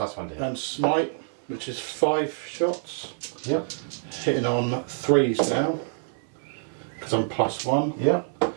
to hit. And smite, which is 5 shots, Yeah. hitting on 3s now, because I'm +1. Yeah.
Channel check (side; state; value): left; silent; 61 dB below the other